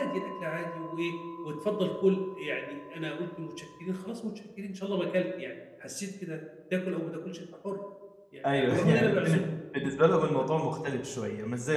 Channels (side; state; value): both; identical; correlation 1.00